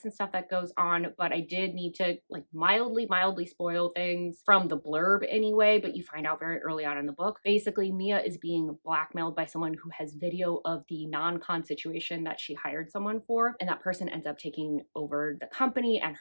and stuff that goes on, but I did need to like mildly spoil things from the blurb anyway, but you find out very early on in the book. Basically, Mia is being blackmailed by someone who has video of the non-con situation that she hired someone for, and that person ends up taking over the company and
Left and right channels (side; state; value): both; inverted; correlation -1.00